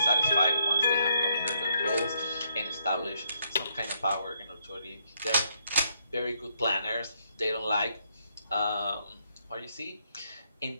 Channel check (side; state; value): both; inverted; correlation -0.74